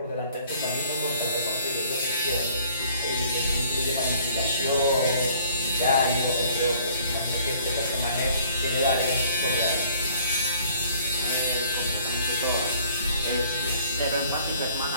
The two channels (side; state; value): both; inverted; correlation -0.56